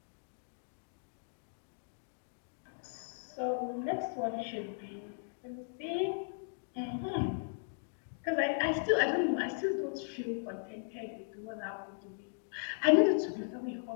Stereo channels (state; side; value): silent; right; digital silence